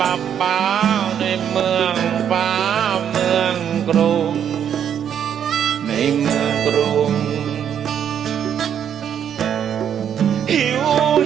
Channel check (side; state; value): left; quieter; 8.9 dB